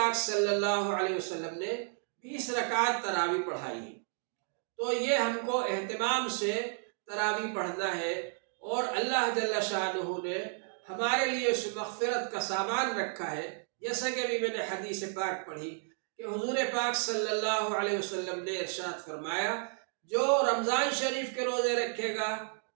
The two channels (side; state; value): left; silent; 56 dB below the other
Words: صلی اللہ علیہ وسلم نے 20 رکعات تراویح پڑھائی ہے۔ تو یہ ہم کو اہتمام سے تراویح پڑھنا ہے، اور اللہ جل شانہ نے ہمارے لیے اس مغفرت کا سامان رکھا ہے، جیسا کہ ابھی میں نے حدیث پاک پڑھی کہ حضور پاک صلی اللہ علیہ وسلم نے ارشاد فرمایا، جو رمضان شریف کے روزے رکھے گا